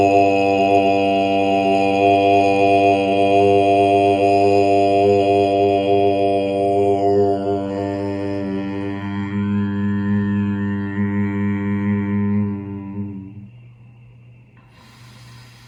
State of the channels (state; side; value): identical; both; correlation 1.00